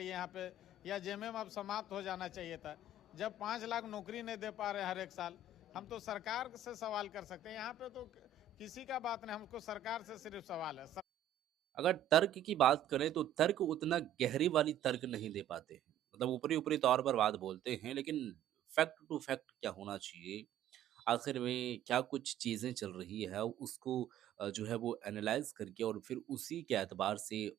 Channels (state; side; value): quieter; left; 6.8 dB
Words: यहाँ पे, या जेएमएम अब समाप्त हो जाना चाहिए था। जब 5 लाख नौकरी नहीं दे पा रहे हर एक साल, हम तो सरकार से सवाल कर सकते हैं। यहाँ पे तो किसी का बात नहीं, हमको सरकार से सिर्फ सवाल है। अगर तर्क की बात करें तो तर्क उतना गहरी वाली तर्क नहीं दे पाते हैं। मतलब ऊपरी ऊपरी तौर पर बात बोलते हैं, लेकिन फैक्ट टू फैक्ट क्या होना चाहिए, आखिर में क्या कुछ चीज़ें चल रही है, उसको जो है वो एनालाइज करके और फिर उसी के एतबार से